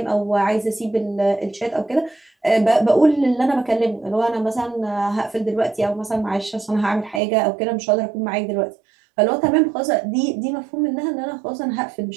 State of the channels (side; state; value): left; drops out; at 7.2 s